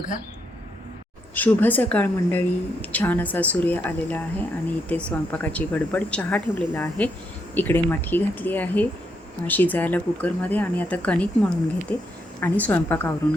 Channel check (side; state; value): both; normal; correlation 0.78